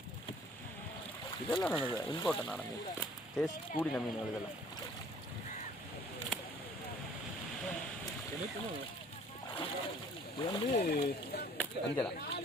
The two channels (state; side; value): normal; both; correlation 0.54